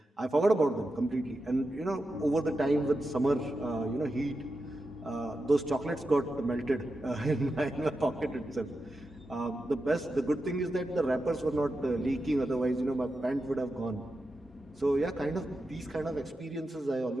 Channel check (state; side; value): normal; both; correlation 0.89